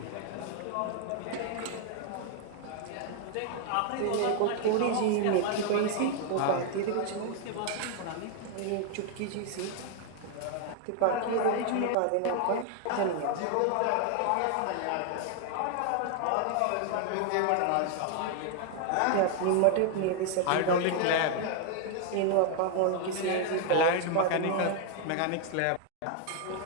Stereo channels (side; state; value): both; different; correlation 0.00